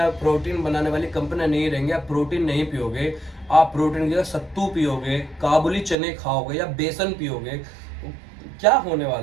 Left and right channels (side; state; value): left; drops out; at 6.0 s